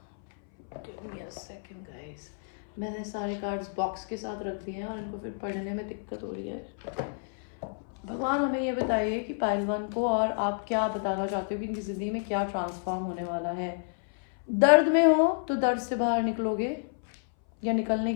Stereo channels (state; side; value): silent; right; 58 dB below the other